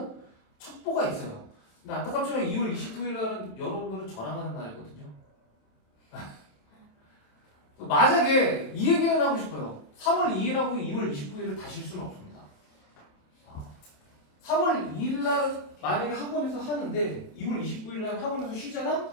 첩보가 있어요. 근데 안타깝지만 2월 29일 날은 여러분들은 저랑 하는 날이거든요. 만약에 이 얘기는 하고 싶어요. 3월 2일하고 2월 29일을 다실 수는 없습니다. 3월 2일 날 만약에 학원에서 하는데 2월 29일 날 학원에서 쉬잖아?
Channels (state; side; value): late; right; 27 ms